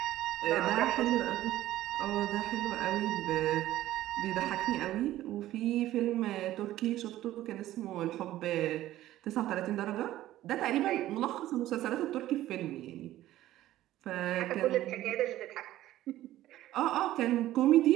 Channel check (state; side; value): quieter; left; 14.5 dB